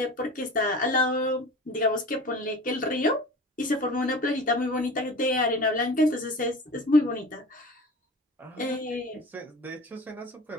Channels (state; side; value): normal; both; correlation 0.36